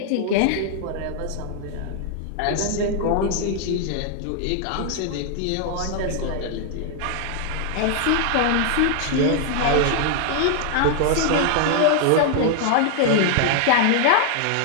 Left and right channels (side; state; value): both; different; correlation 0.00